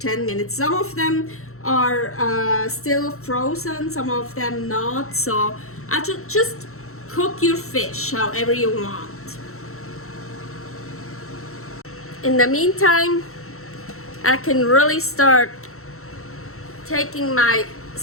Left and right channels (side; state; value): right; late; 0.63 ms